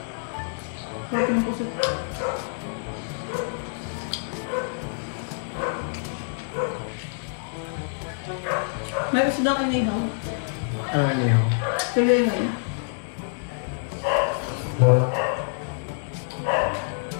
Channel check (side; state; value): right; silent; digital silence